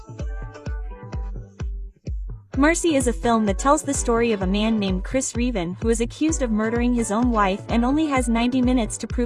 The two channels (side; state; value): both; identical; correlation 1.00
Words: Mercy is a film that tells the story of a man named Chris Reven who is accused of murdering his own wife and only has 90 minutes to